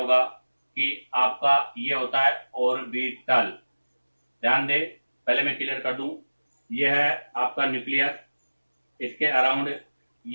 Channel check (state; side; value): inverted; both; correlation -1.00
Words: कि आपका ये होता है ऑर्बिटल। ध्यान दे, पहले मैं क्लियर कर दूं, ये है आपका न्यूक्लियस, इसके अराउंड